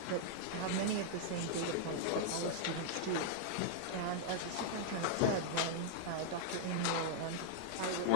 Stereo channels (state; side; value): different; both; correlation -0.01